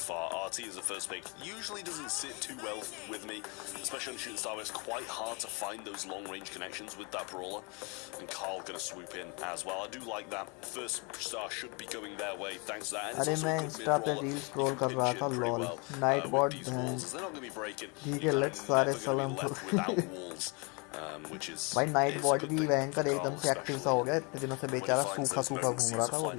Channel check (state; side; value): quieter; right; 31.5 dB